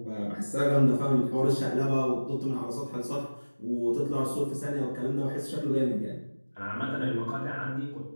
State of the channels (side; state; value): both; inverted; correlation -1.00